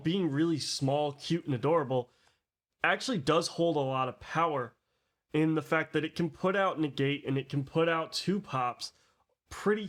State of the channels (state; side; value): identical; both; correlation 1.00